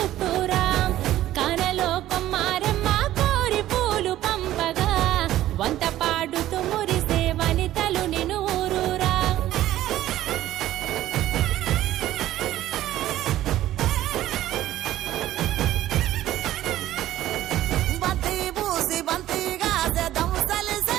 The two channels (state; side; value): quieter; left; 13.9 dB